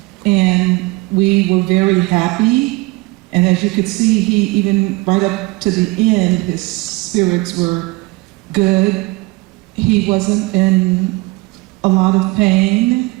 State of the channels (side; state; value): left; quieter; 23.0 dB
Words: and we were very happy. And as you could see, he even right up to the end, his spirits were good. He wasn't in a lot of pain.